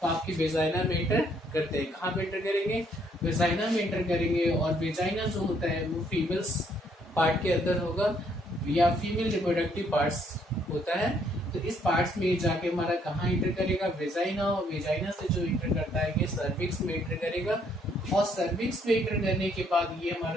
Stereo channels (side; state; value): both; normal; correlation 0.68